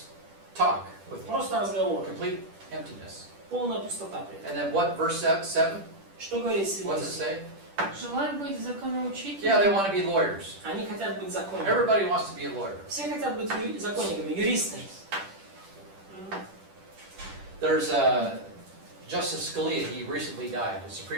talk with Просто разговор, complete emptiness. полная пустота при этом. And then what, verse 7? Что говорит What's it 7? say? Желают быть законоучителями. Yeah, they want to be lawyers. Они хотят быть законниками. Everybody wants to be a lawyer. Все хотят быть законниками, юристами. There's Justice Scalia, he recently died, a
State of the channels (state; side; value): late; left; 10 ms